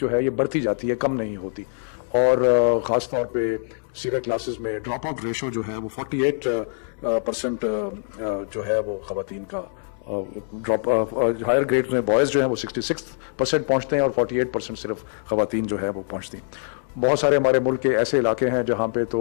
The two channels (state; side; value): silent; right; digital silence